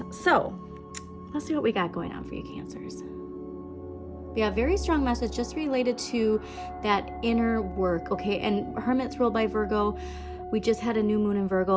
So let's see what we got going on for you, Cancers. We have a very strong message just related to that inner work, okay? And Hermit's ruled by Virgo. We just had a new moon in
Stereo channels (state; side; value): identical; both; correlation 1.00